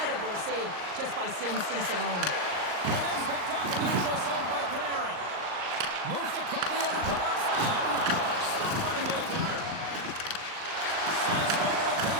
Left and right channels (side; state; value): left; late; 39 ms